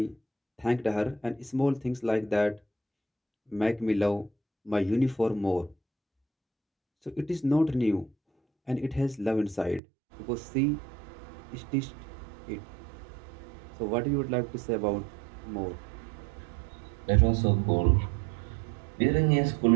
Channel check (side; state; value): left; drops out; at 9.8 s